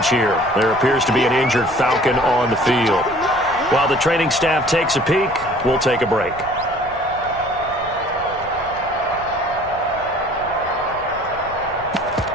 here. There appears to be an injured Falcon on the field. While the training staff takes a peek, we'll take a break.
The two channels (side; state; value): left; noise; rumble, 18 dB below the sound